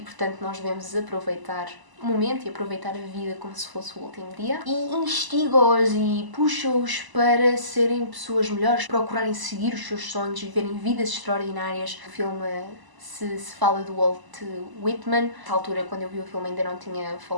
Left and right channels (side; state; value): left; late; 1.0 ms